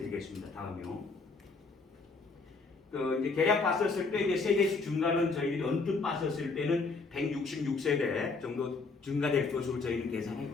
되겠습니다. 다음이요. 이제 계략 봤었을 때 이제 세대수 증가는 저희들이 언뜻 봤었을 때는 166세대 정도 증가될 것으로 저희는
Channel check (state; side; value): quieter; right; 4.1 dB